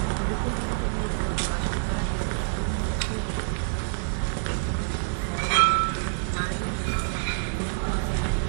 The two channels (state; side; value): silent; left; digital silence